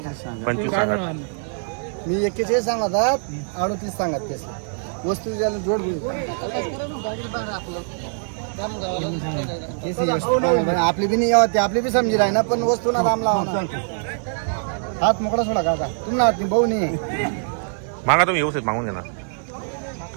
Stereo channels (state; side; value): silent; left; 64 dB below the other